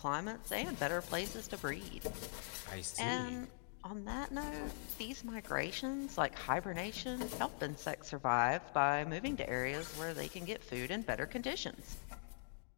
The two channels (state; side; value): silent; right; digital silence